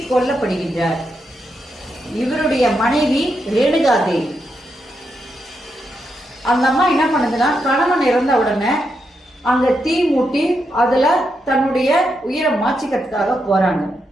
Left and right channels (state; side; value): normal; both; correlation 0.83